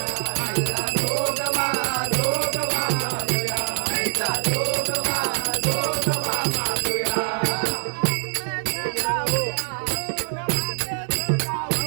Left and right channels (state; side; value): silent; left; digital silence